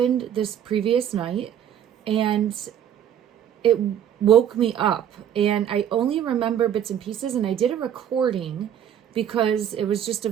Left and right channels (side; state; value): left; quieter; 9.7 dB